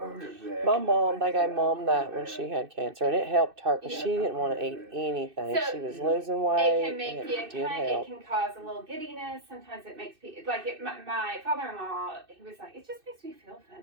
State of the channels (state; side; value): late; left; 2.6 ms